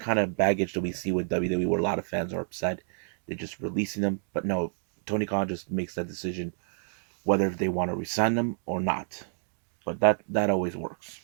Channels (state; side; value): silent; left; 57 dB below the other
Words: of baggage that we see with WWE, where a lot of fans are upset. They're just releasing them, but no, Tony Khan just makes that decision whether they want to resign them or not. But that always works.